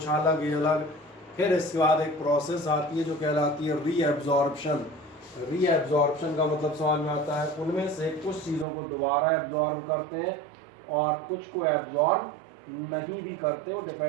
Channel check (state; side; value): drops out; left; at 8.7 s